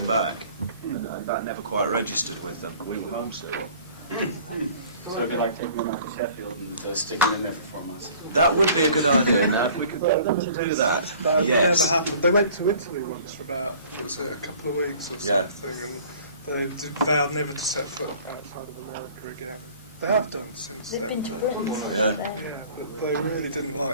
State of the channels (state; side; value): inverted; both; correlation -0.50